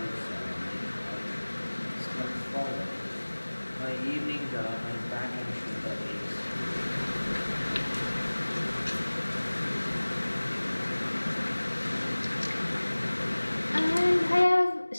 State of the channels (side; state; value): both; inverted; correlation -1.00